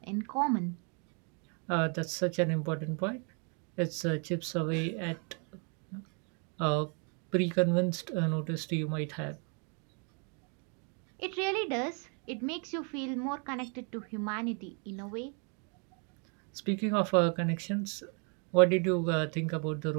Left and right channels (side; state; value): left; quieter; 38.1 dB